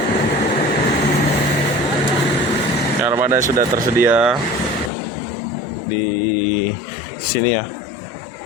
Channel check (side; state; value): right; drops out; at 4.9 s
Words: Armada sudah tersedia di sini ya.